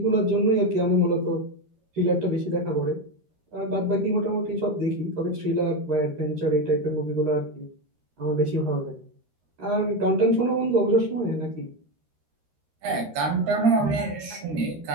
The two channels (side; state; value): left; late; 13 ms